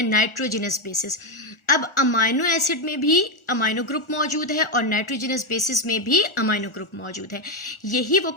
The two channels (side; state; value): right; late; 1.4 ms